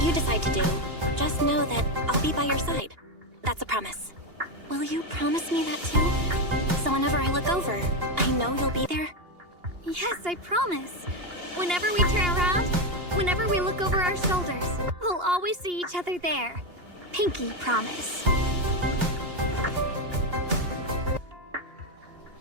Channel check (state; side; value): late; left; 2.8 ms